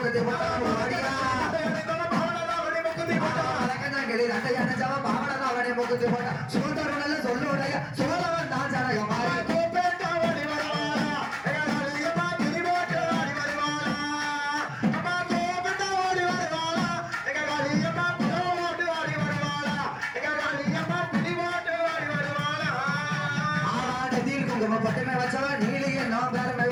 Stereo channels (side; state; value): both; identical; correlation 1.00